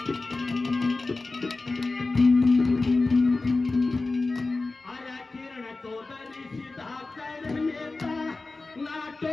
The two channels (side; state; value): right; quieter; 3.5 dB